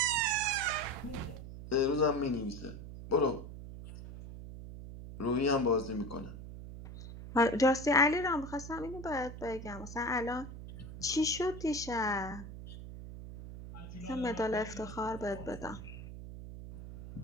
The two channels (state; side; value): noise; right; hum, 11 dB below the sound